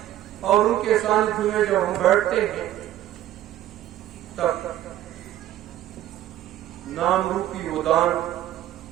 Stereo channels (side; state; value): left; quieter; 13.1 dB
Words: और उनके सानिध्य में जब हम बैठते हैं, तब नाम रूपी वो दान,